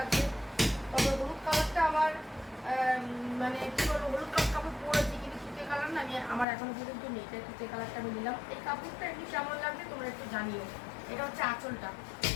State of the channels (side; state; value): right; drops out; at 6.5 s